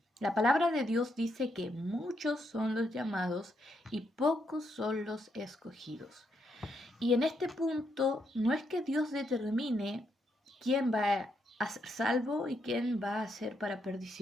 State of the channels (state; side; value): normal; both; correlation 0.78